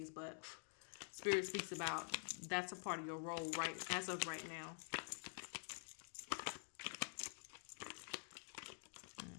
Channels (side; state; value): right; silent; digital silence